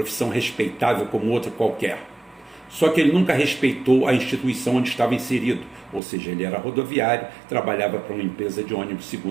respeitável como outra qualquer. Só que ele nunca respeitou a instituição onde estava inserido, ou seja, ele era rodoviário, trabalhava para uma empresa de ônibus,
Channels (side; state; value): left; drops out; at 6.0 s